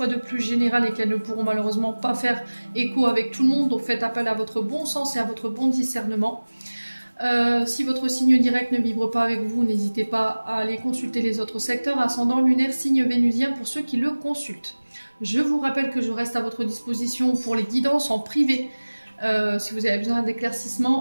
de plus générales et qu'elles ne pourront malheureusement pas faire écho avec tout le monde, donc faites appel à votre bon sens et à votre bon discernement. Si votre signe direct ne vibre pas avec vous, n'hésitez pas à aller consulter les autres secteurs, ascendant, lunaire, signe vénusien pour ceux qui le consultent. Je vous rappelle que je reste à votre disposition pour les guidances en privé. Si vous avez besoin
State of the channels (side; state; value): both; inverted; correlation -1.00